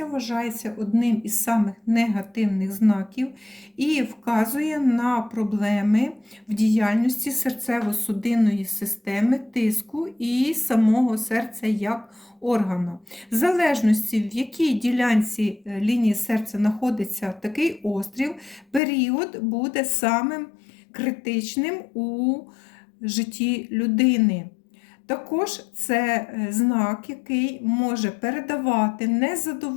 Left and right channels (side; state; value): right; drops out; at 18.8 s